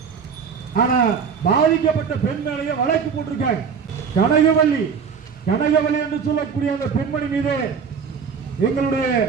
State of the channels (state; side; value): quieter; left; 6.4 dB